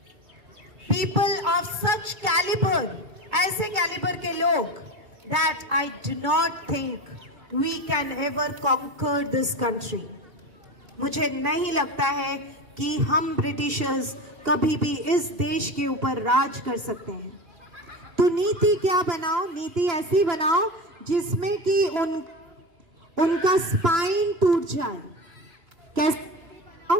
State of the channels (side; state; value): left; late; 2.3 ms